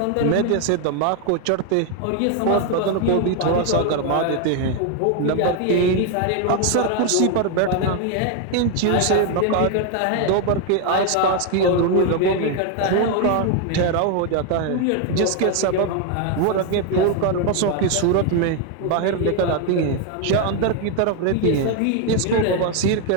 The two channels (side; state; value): both; different; correlation 0.01